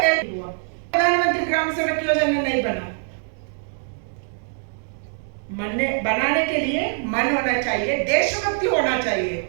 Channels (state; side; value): silent; left; 61 dB below the other